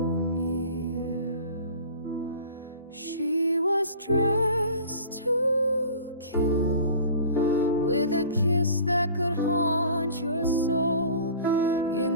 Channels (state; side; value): inverted; both; correlation -0.43